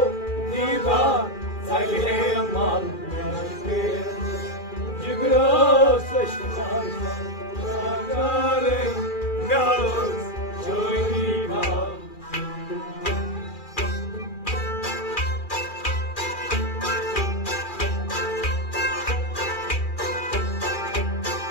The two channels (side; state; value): right; late; 2.4 ms